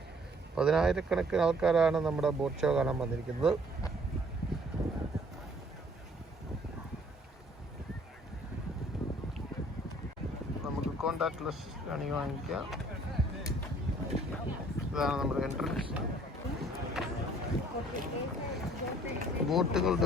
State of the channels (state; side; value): normal; both; correlation 0.59